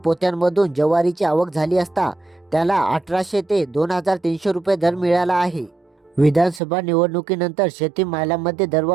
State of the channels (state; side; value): drops out; left; at 6.6 s